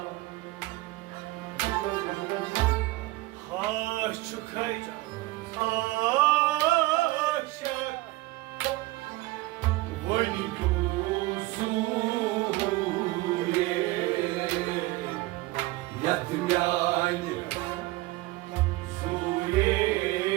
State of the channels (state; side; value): quieter; left; 19.8 dB